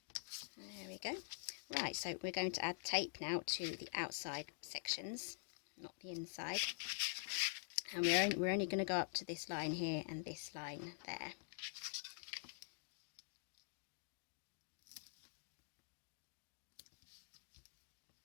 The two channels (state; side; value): silent; right; digital silence